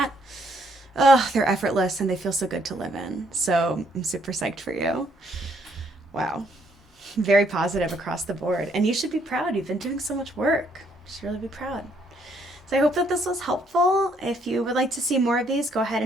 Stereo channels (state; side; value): normal; both; correlation 0.69